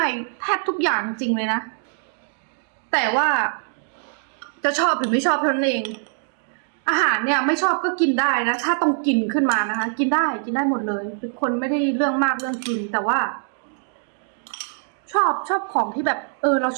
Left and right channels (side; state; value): left; silent; digital silence